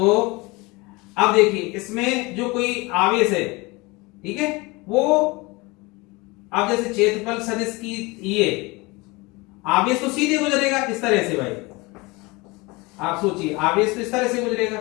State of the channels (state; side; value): quieter; right; 24.5 dB